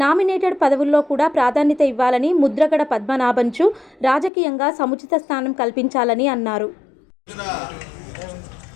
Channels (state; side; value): drops out; right; at 4.3 s